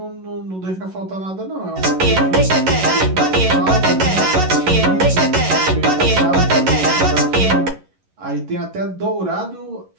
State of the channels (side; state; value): left; late; 11 ms